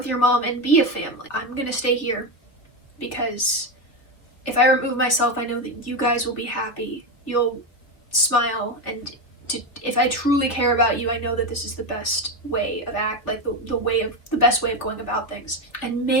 your mom, and be a family. I'm gonna stay here because if I remove myself, I know that you guys will be happy. You'll smile and if I truly care about you, I know that this is the best way of the best way of going about things. And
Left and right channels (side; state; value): right; late; 3.1 ms